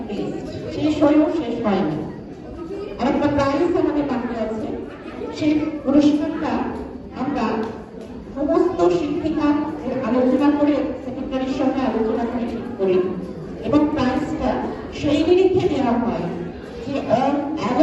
list, শেষ হয়েও শেষ হয়নি। আর একটা প্রাইজ আমাদের বাকি আছে। সেই পুরস্কারটা আমরা সমস্ত শিক্ষিকা আলোচনা করে, সেক্রেটারির সঙ্গে আলোচনা করে ঠিক করি, এবং প্রাইজটা সেই নিরিখে দেওয়া হয় যে অল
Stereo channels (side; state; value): both; identical; correlation 1.00